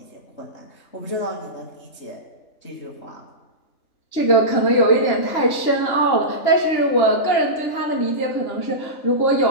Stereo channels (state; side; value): late; right; 3.0 ms